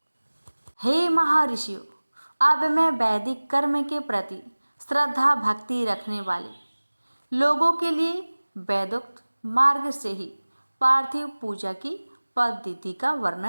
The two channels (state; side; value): inverted; both; correlation -1.00